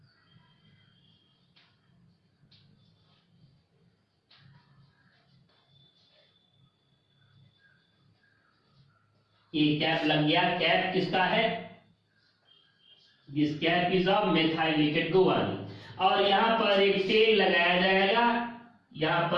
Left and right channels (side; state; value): both; identical; correlation 1.00